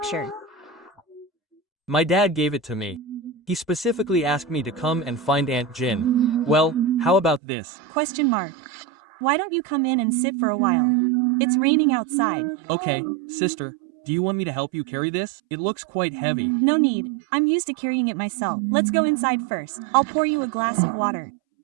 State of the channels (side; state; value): left; drops out; at 7.4 s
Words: My dad gave it to me. He specifically asked me to come and find Aunt Jin. Well, how about this? Question mark. Why don't you come in and sit for a while? It's raining outside. Okay, sister, do you want me to help you carry this? It looks quite heavy. No need. I'm used to carrying it myself. Let's go inside first. I'll pour you a glass of water.